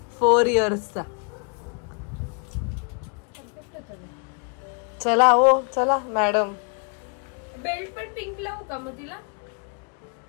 4 इयर्सचा. चला हो चला मॅडम. बेल्ट पण पिंक लावू का मग तिला.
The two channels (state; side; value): quieter; right; 37.9 dB